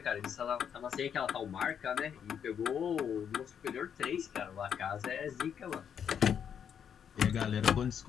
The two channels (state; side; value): quieter; right; 8.1 dB